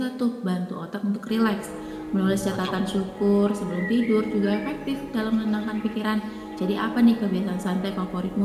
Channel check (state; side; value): identical; both; correlation 1.00